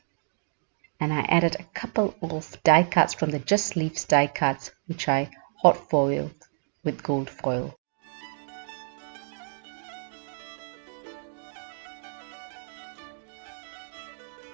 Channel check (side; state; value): left; silent; digital silence